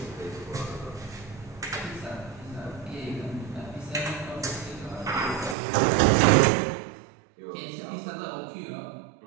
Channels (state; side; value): drops out; left; at 5.6 s